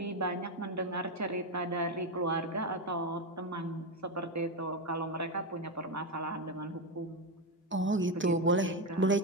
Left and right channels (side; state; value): both; normal; correlation 0.10